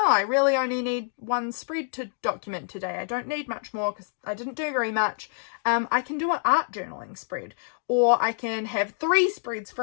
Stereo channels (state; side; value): silent; right; digital silence